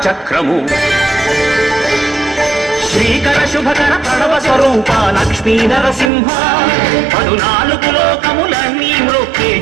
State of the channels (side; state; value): left; drops out; at 6.1 s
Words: చక్రము శ్రీకర శుభకర ప్రణవ స్వరూప లక్ష్మీ నరసింహ 14 లోకములన్నీ మ్రొక్కే